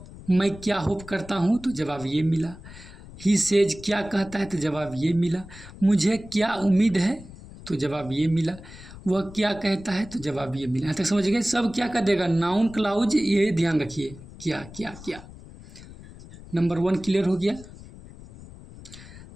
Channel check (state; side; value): noise; left; rumble, 17 dB below the sound